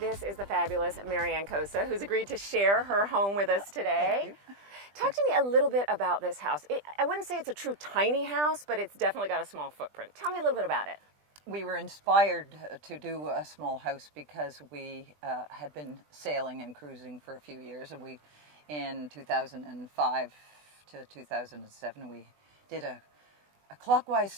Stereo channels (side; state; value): left; late; 20 ms